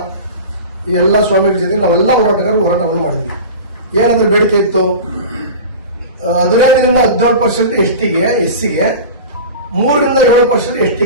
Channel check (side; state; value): both; inverted; correlation -0.32